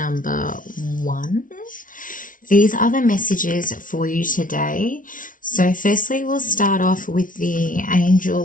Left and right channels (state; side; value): late; right; 0.38 ms